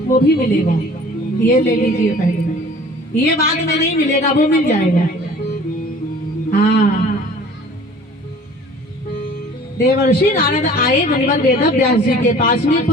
वो भी मिलेगा। ये ले लीजिए पहले, ये बाद में नहीं मिलेगा, वो मिल जाएगा। हाँ, देवर्षि नारद आए मुनिवर वेद व्यास जी के पास में।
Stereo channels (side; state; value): both; normal; correlation 0.48